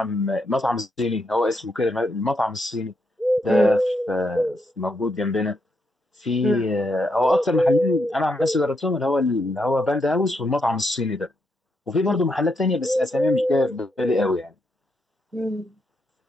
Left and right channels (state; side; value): normal; both; correlation 0.80